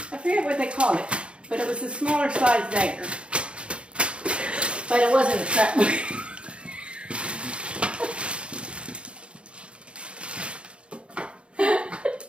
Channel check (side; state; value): left; late; 0.058 ms